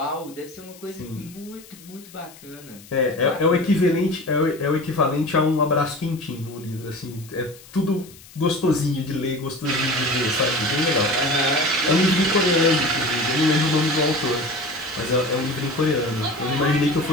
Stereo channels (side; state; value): left; noise; hiss, 21 dB below the sound